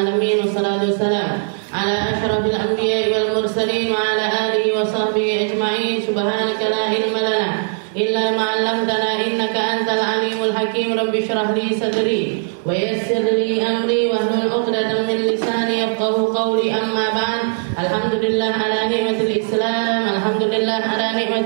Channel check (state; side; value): silent; left; digital silence